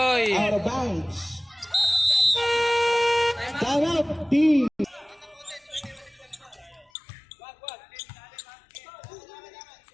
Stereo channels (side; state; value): right; drops out; at 6.9 s